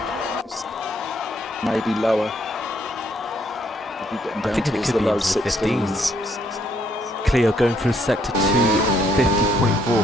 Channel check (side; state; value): both; normal; correlation 0.70